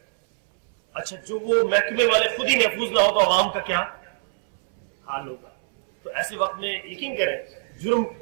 اچھا، جو وہ محکمے والے خود ہی محفوظ نہ ہو تو عوام کا کیا حال ہوگا؟ تو ایسے وقت میں یقین کریں،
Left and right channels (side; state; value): left; silent; 63 dB below the other